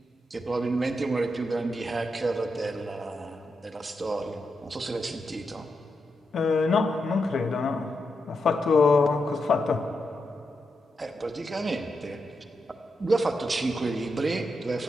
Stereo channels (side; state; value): both; normal; correlation 0.85